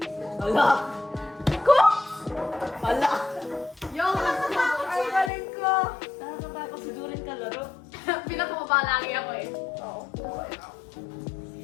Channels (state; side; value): drops out; right; at 5.3 s